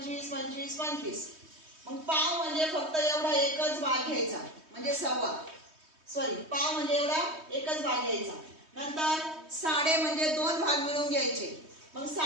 25, 25. मग पाव म्हणजे फक्त एवढा एकच भाग घ्यायचा, म्हणजे सव्वा. पाव म्हणजे एवढा एकच भाग घ्यायचा. नंतर साडे म्हणजे 2 भाग मिळून घ्यायचे. मग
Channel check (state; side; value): late; left; 3.2 ms